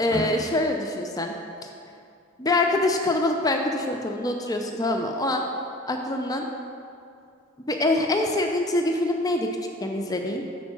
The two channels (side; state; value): both; normal; correlation 0.44